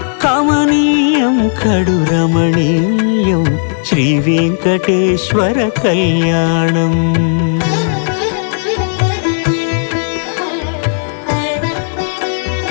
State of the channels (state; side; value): silent; right; digital silence